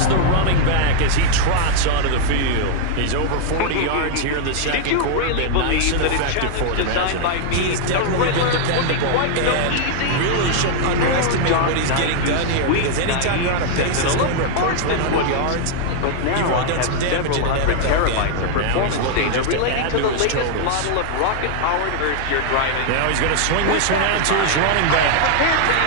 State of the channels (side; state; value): both; different; correlation 0.00